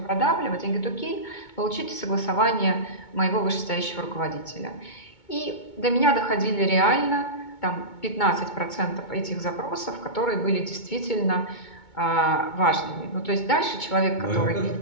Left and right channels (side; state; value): right; late; 2.2 ms